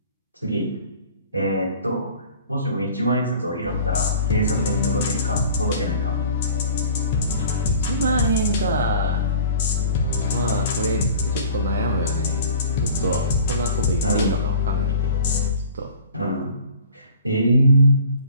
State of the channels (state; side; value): inverted; both; correlation -0.44